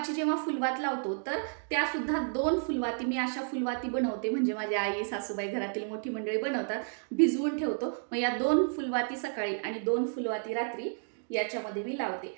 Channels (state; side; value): silent; left; digital silence